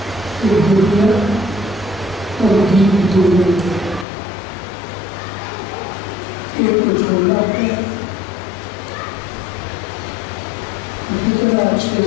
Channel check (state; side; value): drops out; right; at 4.0 s